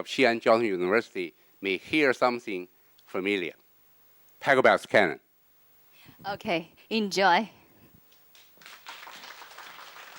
Xi'an Jiao Tong University may hear something familiar. Paragraphs canon. okay, enjoy.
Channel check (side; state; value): both; identical; correlation 1.00